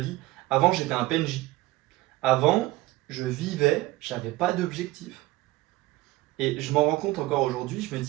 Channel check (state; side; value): quieter; left; 18.8 dB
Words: Avant, j'étais un PNJ. Avant, je vivais, j'avais pas d'objectif. Et je m'en rends compte encore aujourd'hui, je me